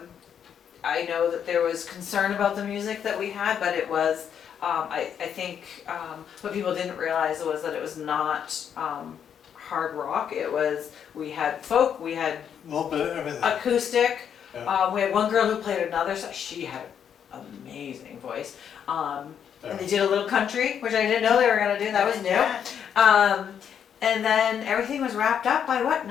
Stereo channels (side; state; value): right; quieter; 8.3 dB